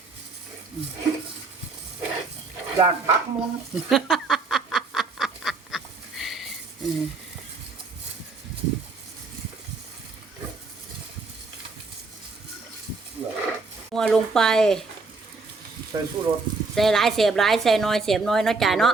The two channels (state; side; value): quieter; left; 4.0 dB